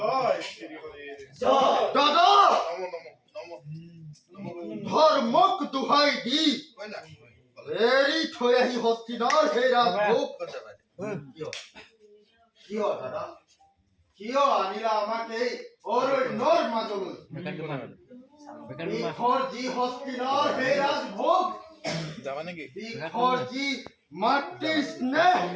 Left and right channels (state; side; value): identical; both; correlation 1.00